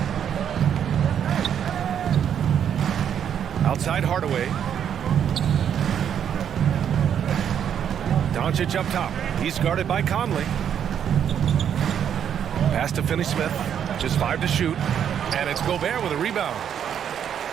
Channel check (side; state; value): left; quieter; 8.8 dB